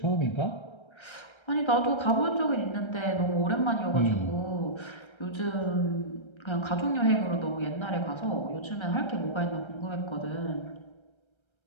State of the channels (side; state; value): right; late; 1.3 ms